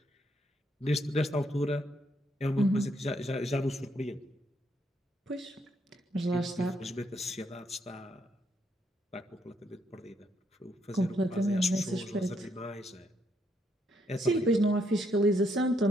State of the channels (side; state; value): both; normal; correlation 0.74